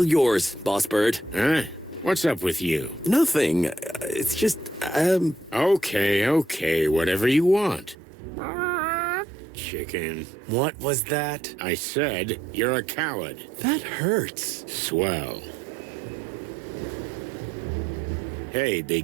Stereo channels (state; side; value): drops out; left; at 8.0 s